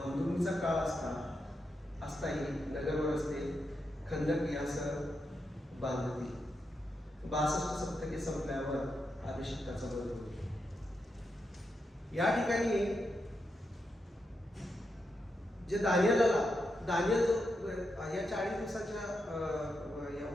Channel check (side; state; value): both; normal; correlation 0.85